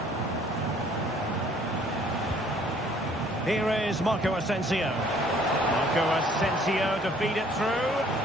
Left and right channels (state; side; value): normal; both; correlation 0.58